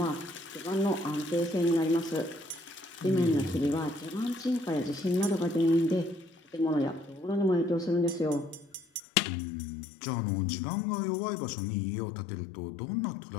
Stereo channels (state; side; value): drops out; right; at 9.0 s